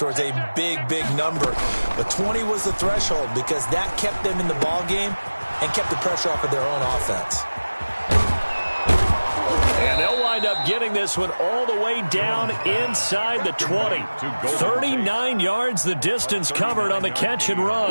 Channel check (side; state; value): both; inverted; correlation -1.00